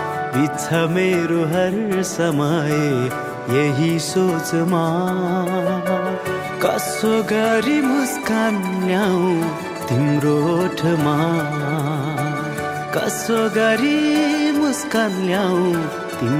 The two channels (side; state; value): both; identical; correlation 1.00